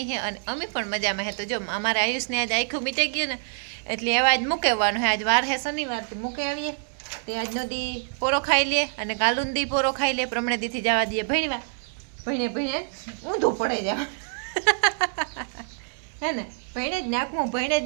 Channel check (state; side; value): silent; left; 60 dB below the other